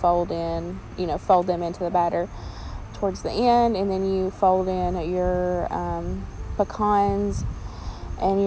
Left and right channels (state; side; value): identical; both; correlation 1.00